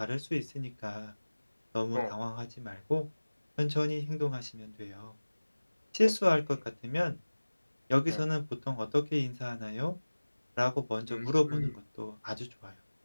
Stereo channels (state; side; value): inverted; both; correlation -1.00